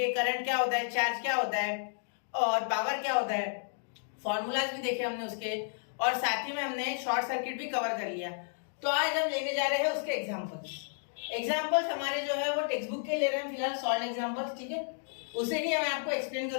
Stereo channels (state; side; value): silent; right; digital silence